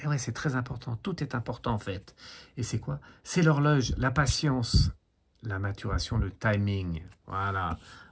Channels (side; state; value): both; identical; correlation 1.00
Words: Et ouais, c'est très important. Tout est important en fait. Et c'est quoi? C'est l'horloge, la patience, la maturation, le timing. Voilà.